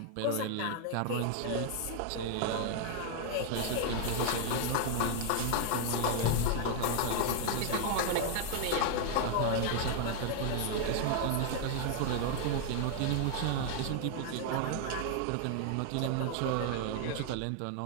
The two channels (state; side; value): different; both; correlation 0.00